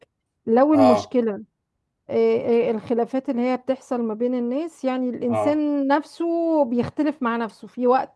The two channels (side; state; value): both; identical; correlation 1.00